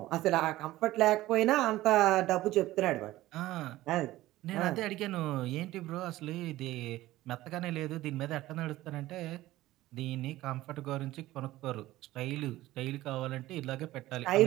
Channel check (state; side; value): quieter; left; 16.4 dB